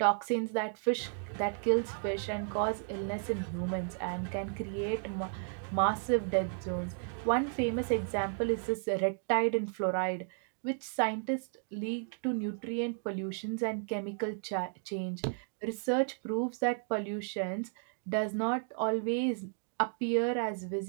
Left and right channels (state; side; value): silent; left; 55 dB below the other